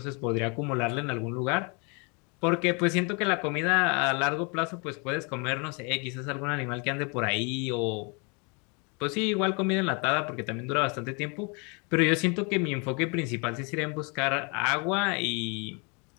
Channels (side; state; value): right; quieter; 33.0 dB